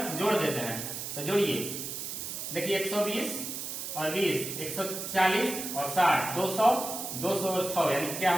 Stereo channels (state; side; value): noise; right; hiss, 6 dB below the sound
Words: जोड़ देते हैं, तो जोड़िए देखिए 120 और 20 140 और 60 200 200 और 6 यानी क्या